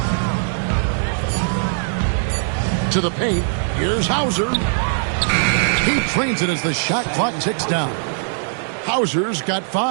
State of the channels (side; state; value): left; silent; digital silence